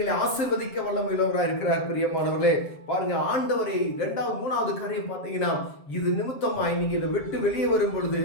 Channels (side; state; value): right; late; 7.4 ms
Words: ஆசீர்வதிக்க வல்லமையுள்ளவராக இருக்கிறார். பிரியமானவர்களே, பாருங்க, ஆண்டவரை 2வது 3வது காரியம் பார்த்தீங்கன்னா இது நிமித்தமாய் நீங்க இதை விட்டு வெளியே வரும் பொழுது